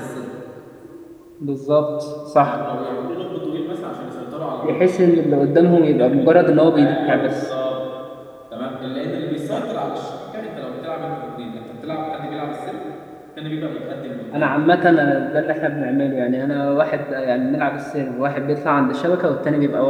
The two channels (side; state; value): both; identical; correlation 1.00